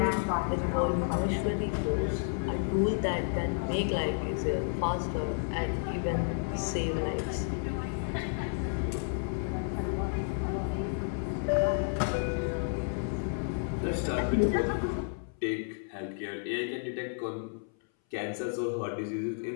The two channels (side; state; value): right; silent; 57 dB below the other